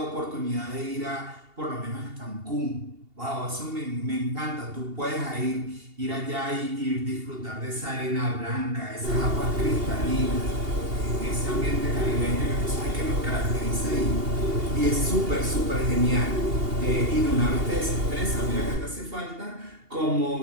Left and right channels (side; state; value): left; late; 2.8 ms